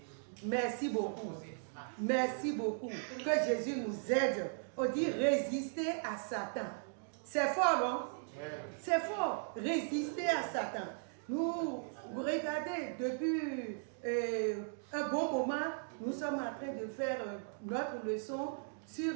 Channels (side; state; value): left; silent; digital silence